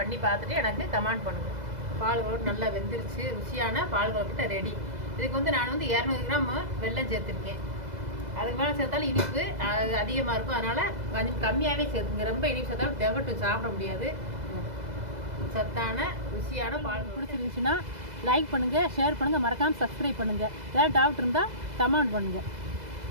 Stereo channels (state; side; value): late; left; 2.0 ms